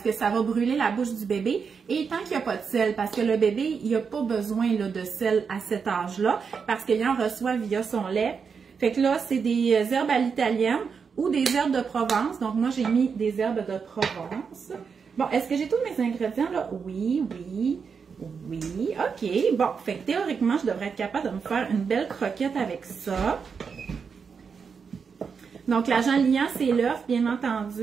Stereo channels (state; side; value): quieter; left; 5.9 dB